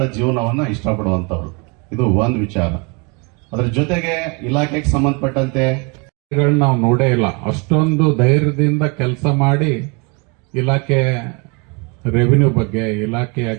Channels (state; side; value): quieter; left; 31.5 dB